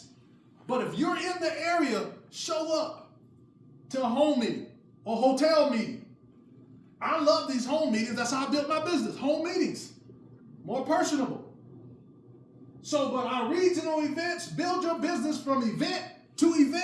But if you're in the area, show up to a home meeting or hotel meeting. I love these home meetings. That's how I built my business. Home meetings, more personable. So, but our regional events, build your business from event to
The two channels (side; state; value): both; identical; correlation 1.00